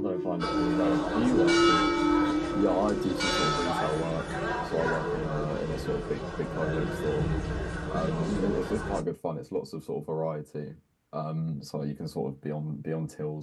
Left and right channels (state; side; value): identical; both; correlation 1.00